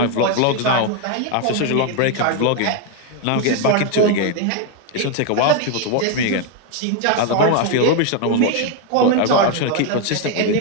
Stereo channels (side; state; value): both; different; correlation 0.01